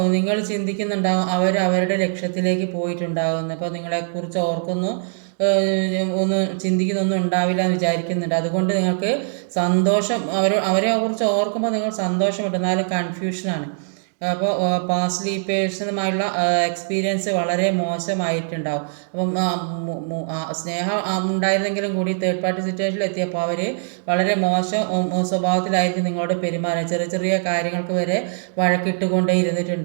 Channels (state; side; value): silent; left; digital silence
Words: നിങ്ങൾ ചിന്തിക്കുന്നുണ്ടാവും അവരുടെ ലക്ഷ്യത്തിലേക്ക് പോയിട്ടുണ്ടാകുന്നു. അപ്പോൾ നിങ്ങളെക്കുറിച്ച് ചിന്തിക്കുന്നൊന്നും ഉണ്ടാവില്ല എന്ന് വിചാരിക്കുന്നുണ്ട്. അതുകൊണ്ട് നിങ്ങൾക്ക് സന്തോഷം അവരെ കുറിച്ച് ഓർക്കുമ്പോൾ നിങ്ങൾ സന്തോഷമുണ്ട്, എന്നാലും കൺഫ്യൂഷനാണ്. അപ്പോൾ പാസ്റ്റ് പേഴ്സണുമായുള്ള എക്സ്പീരിയൻസ് വളരെ മോശമായിട്ടുണ്ടാവും. അപ്പം സ്നേഹം ഉണ്ടായിരുന്നെങ്കിലും കൂടി തേർഡ് പാർട്ടി സിറ്റുവേഷനിൽ എത്തിയപ്പോൾ അവർ വളരെ മോശം സ്വഭാവത്തിലായിരിക്കും നിങ്ങളോട് പെരുമാറുക. ചെറിയ ചെറിയ കാര്യങ്ങൾക്ക് വരെ വഴക്കിട്ടുകൊണ്ടേ